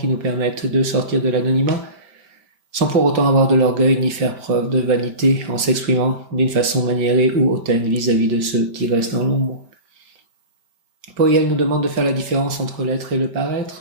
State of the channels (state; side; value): late; left; 5.2 ms